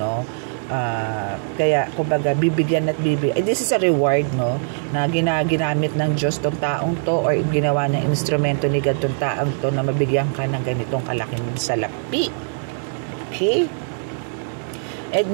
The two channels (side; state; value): left; silent; digital silence